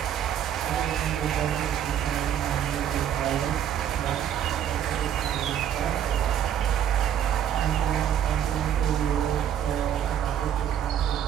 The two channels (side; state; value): left; quieter; 9.8 dB